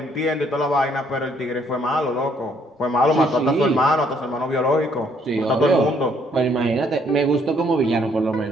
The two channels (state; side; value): normal; both; correlation 0.66